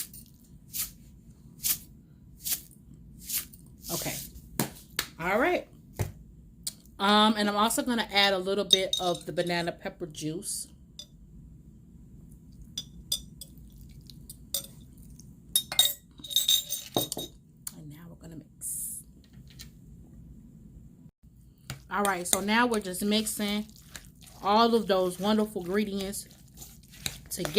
okay. All right. And I'm also going to add a little bit of the banana pepper juice. And now we're going to mix. All right. So now we're just mixing all of those wonderful ingredients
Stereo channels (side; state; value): both; identical; correlation 1.00